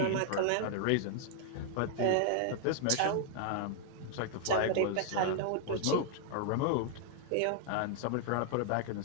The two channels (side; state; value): both; different; correlation 0.00